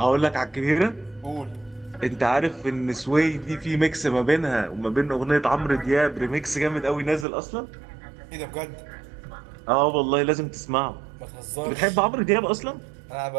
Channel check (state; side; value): drops out; left; at 7.2 s